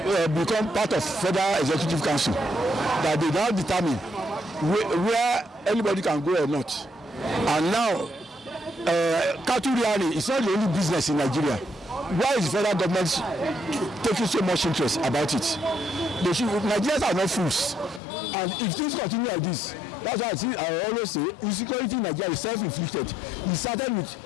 become part of Federal Executive Council, that they now determine where anybody can go or not? And now, cattle rearing is not the only business in Nigeria. Why is the federal government taking so much interest about it? Nigerians are not fools. And if things continue like this, that's why I always say insecurity in Nigeria is self-inflicted. It started with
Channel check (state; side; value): drops out; right; at 18.0 s